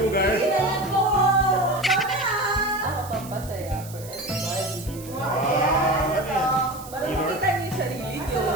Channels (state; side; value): noise; right; hiss, 17 dB below the sound